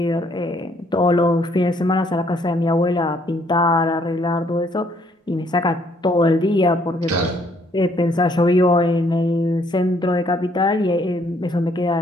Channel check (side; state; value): both; normal; correlation 0.66